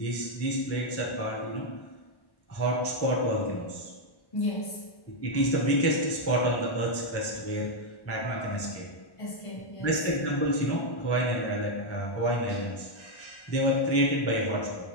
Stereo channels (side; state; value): right; late; 1.1 ms